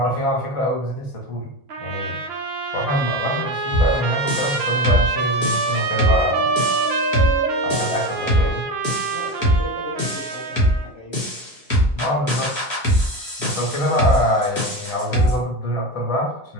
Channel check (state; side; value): normal; both; correlation 0.21